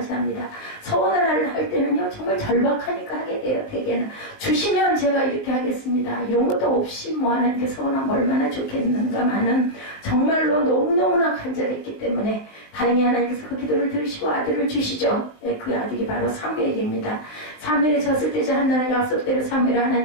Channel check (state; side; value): late; right; 20 ms